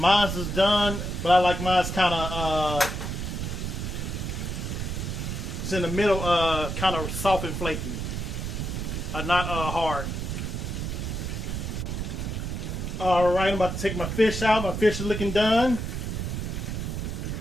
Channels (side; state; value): right; noise; rumble, 3 dB below the sound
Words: is done, but I like mine's kind of it's in the middle, kind of soft and flaky, not hard. All right, I'm about to take my fish out. My fish is looking done.